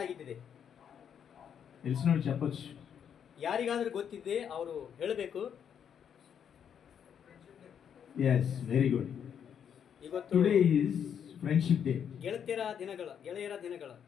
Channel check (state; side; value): quieter; right; 8.2 dB